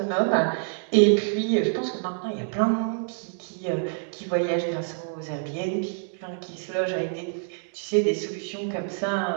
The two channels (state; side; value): silent; left; 60 dB below the other